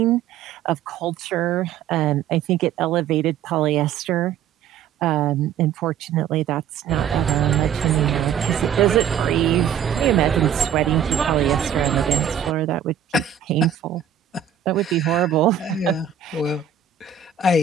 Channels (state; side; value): quieter; left; 8.7 dB